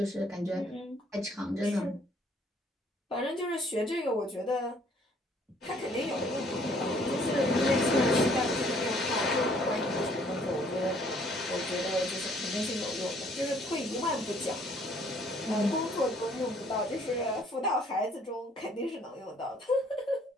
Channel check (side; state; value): both; normal; correlation 0.62